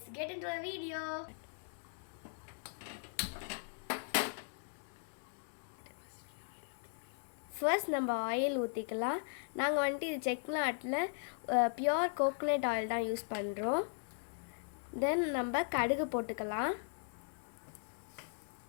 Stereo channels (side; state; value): right; silent; digital silence